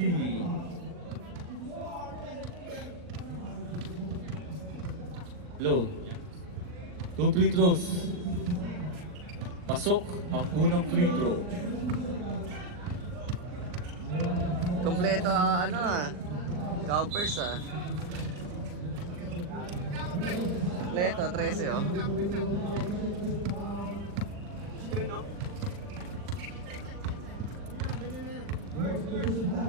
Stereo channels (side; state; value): left; late; 39 ms